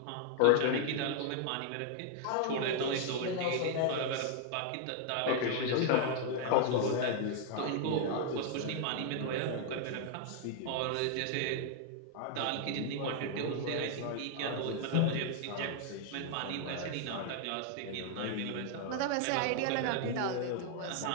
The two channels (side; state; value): both; different; correlation 0.00